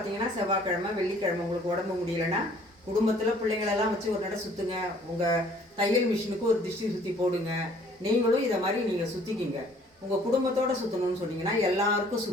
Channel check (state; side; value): normal; both; correlation 0.57